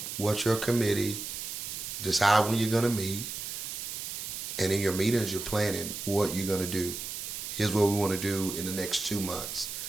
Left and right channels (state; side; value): noise; right; hiss, 6 dB below the sound